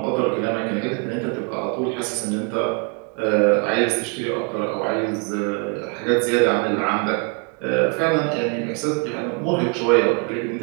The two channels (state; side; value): quieter; left; 34.8 dB